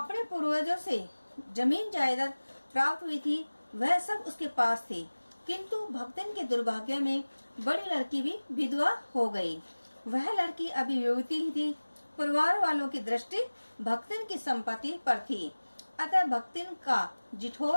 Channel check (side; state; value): both; inverted; correlation -1.00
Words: पूर्वजों से जमीन जायदाद प्राप्त हुई थी, वह सब उसके पास थी, किंतु भक्तिन के दुर्भाग्य में बड़ी लड़की भी विधवा हो गई। वह लड़की अभी युवती ही थी। परिवार वालों की दृष्टि भक्तिन की संपत्ति पर थी, अतः भक्तिन का